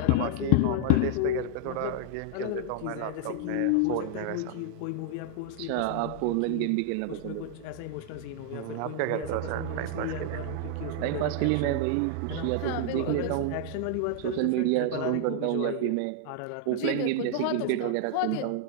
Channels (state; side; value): different; both; correlation 0.00